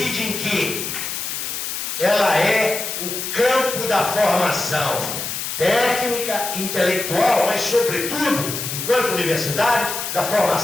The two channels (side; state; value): left; noise; hiss, 4 dB below the sound